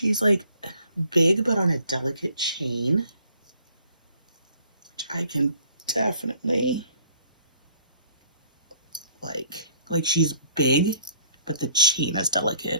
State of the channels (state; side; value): inverted; both; correlation -0.59